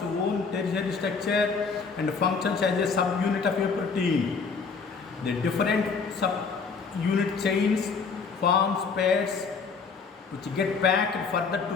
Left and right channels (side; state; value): right; quieter; 5.1 dB